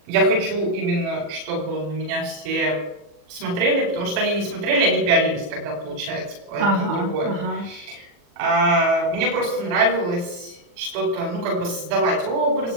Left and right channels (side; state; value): left; late; 40 ms